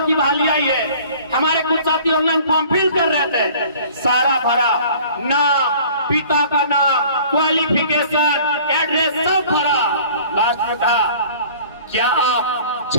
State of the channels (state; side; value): inverted; both; correlation -0.49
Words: की बहाली आई है, हमारे कुछ साथी ऑनलाइन फॉर्म फिल कर रहे थे, सारा भरा, नाम, पिता का नाम, क्वालिफिकेशन, एड्रेस सब भरा, लास्ट में था